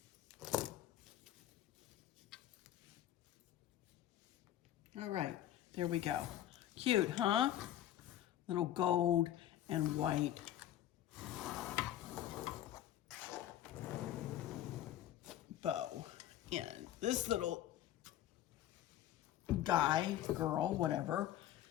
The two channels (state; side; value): quieter; right; 12.3 dB